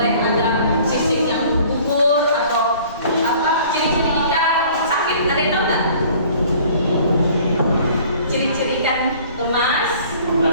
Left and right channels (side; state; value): both; inverted; correlation -0.52